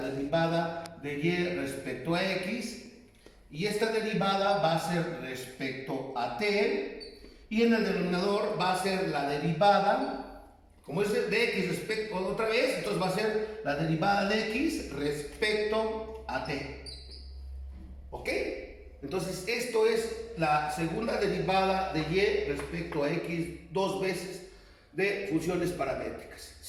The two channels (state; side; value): identical; both; correlation 1.00